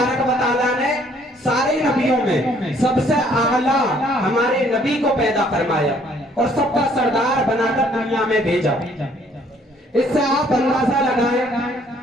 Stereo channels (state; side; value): normal; both; correlation 0.62